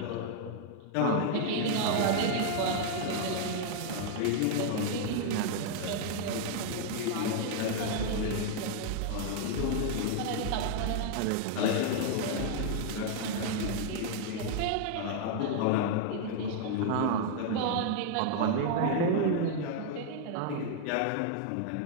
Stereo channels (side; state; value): both; different; correlation 0.00